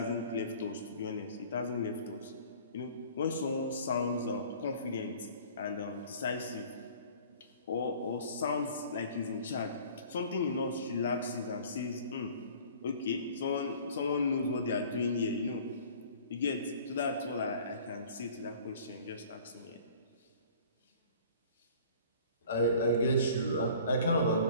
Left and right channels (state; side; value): inverted; both; correlation -0.49